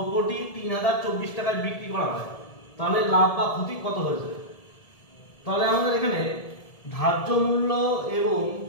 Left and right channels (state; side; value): late; right; 1.7 ms